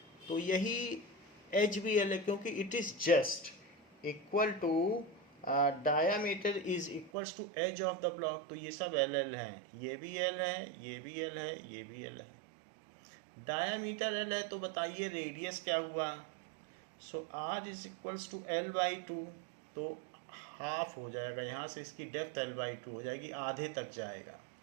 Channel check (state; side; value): drops out; left; at 7.1 s